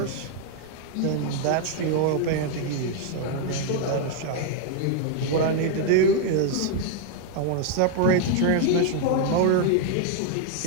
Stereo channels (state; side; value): different; both; correlation 0.00